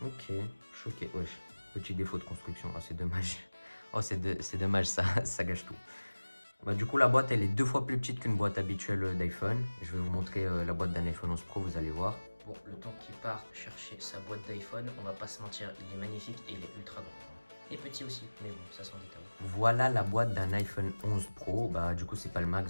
Ok, choqué. Wesh, petit défaut de construction. Oh, c'est dommage. Oh, c'est dommage, ça gâche tout. Du coup, la boîte, elle est 2 fois plus petite qu'une boîte habituelle d'iPhone. Je vais vous montrer la boîte d'un iPhone 11 Pro, vous allez voir. Bon, le temps qu'il part chercher sa boîte d'iPhone, on va pas se mentir, il est magnifique et il est ultra grand. Et petit aussi, mais bon, ça s'en détaille. Voilà la boîte d'un iPhone 11 Pro. Du coup, c'est pas le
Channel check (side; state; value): both; inverted; correlation -1.00